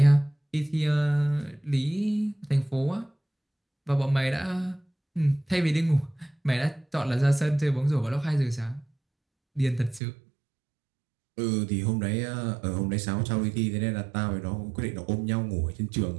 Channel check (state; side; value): drops out; left; at 10.0 s